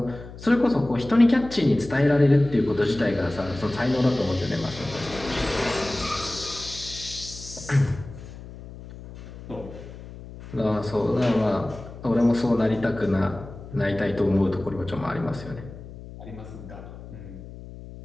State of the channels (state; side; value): noise; left; hum, 14 dB below the sound